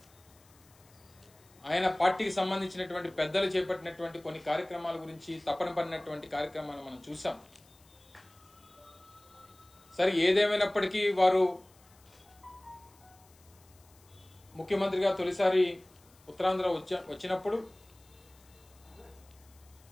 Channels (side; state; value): left; noise; hiss, 28 dB below the sound